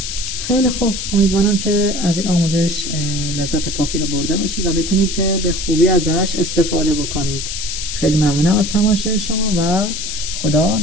خیلی خوب، امیدوارم که از این آموزش لذت کافی رو برده باشید و بتونید که به خوبی ازش استفاده بکنید. خیلی ممنونم از تماشای شما و خدا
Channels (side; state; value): left; noise; hiss, 5 dB below the sound